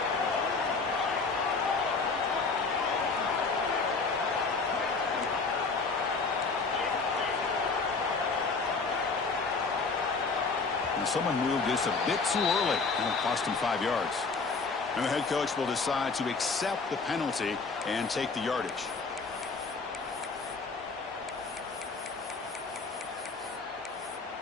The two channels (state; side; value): quieter; right; 4.3 dB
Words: Someone moved this a bit too early, and it cost him 5 yards. And the head coach will decide to accept the penalty and take the yardage.